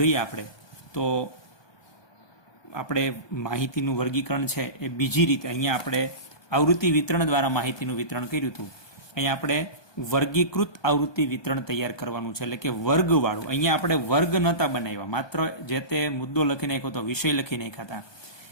આપણે તો આપણે માહિતીનું વર્ગીકરણ છે એ બીજી રીતે અહીંયા આપણે આવૃત્તિ વિતરણ દ્વારા માહિતીનું વિતરણ કર્યું હતું. અહીંયા આપણે વર્ગીકૃત આવૃત્તિ વિતરણ તૈયાર કરવાનું છે, એટલે કે વર્ગવાળું. અહીંયા આપણે વર્ગ નહોતા બનાવ્યા, માત્ર જે તે મુદ્દો લખી નાખ્યો તો વિષય લખી નાખ્યા હતા.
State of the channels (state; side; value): late; right; 1.2 ms